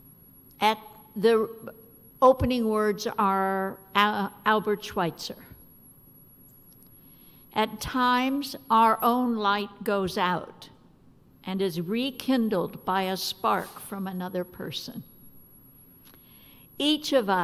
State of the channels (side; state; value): both; identical; correlation 1.00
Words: At the opening words are Albert Schweitzer. At times, our own light goes out and is rekindled by a spark from another person. Each of